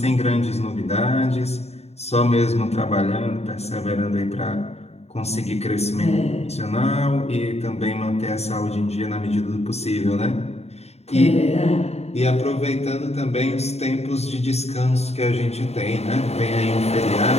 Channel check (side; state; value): right; late; 0.31 ms